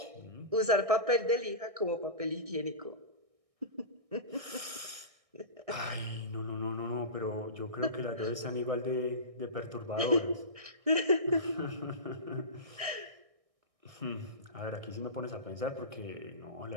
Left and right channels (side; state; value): left; late; 1.6 ms